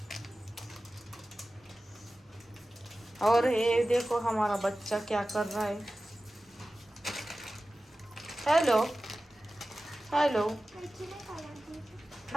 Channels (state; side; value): normal; both; correlation 0.95